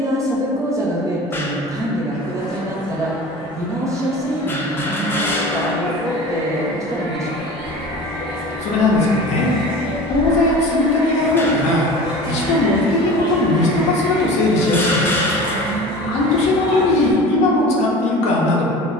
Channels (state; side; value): normal; both; correlation 0.37